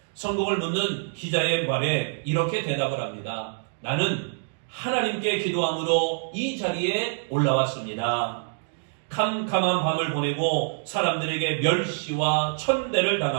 성공을 묻는 기자의 말에 이렇게 대답을 합니다. 나는 하나님께 기도함으로 이 자리에 올라왔습니다. 캄캄한 밤을 보내고 사람들에게 멸시와 천대를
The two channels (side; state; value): left; silent; digital silence